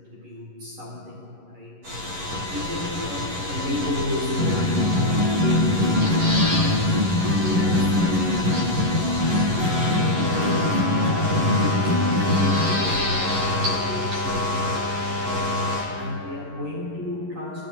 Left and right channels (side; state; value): left; late; 11 ms